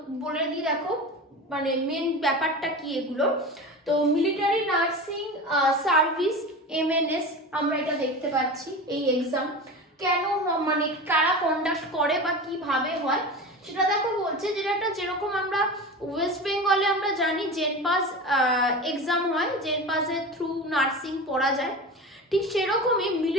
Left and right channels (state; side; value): normal; both; correlation 0.30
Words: বলে দিই, দেখো মানে মেন ব্যাপারটা কি এগুলো। তো মিলিটারি নার্সিং সার্ভিস MNS আমরা এটা দেখতে পাচ্ছি। এই এক্সাম কেন মানে কারা কন্ডাক্ট করে বা কিভাবে হয় সেটা দেখো বলছে, যেটা যেরকম আমরা ওয়েস্ট বেঙ্গলে আমরা জানি জেনপাস এক্সাম হয়, জেনপাসের থ্রু নার্সিং পড়া যায়, ঠিক সেরকমই